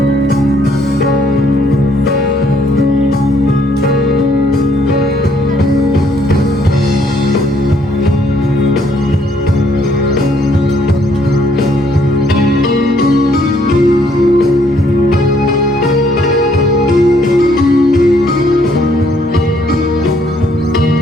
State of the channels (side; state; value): both; normal; correlation 0.67